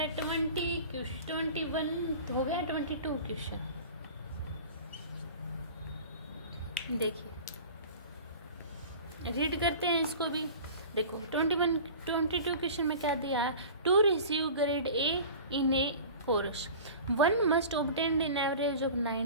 21 हो गया, 22 क्वेश्चन देखिए रीड करते हैं इसको भी। देखो 22 क्वेश्चन में क्या दिया है, to receive grade A in a course. One must obtain an average of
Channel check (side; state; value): both; inverted; correlation -0.39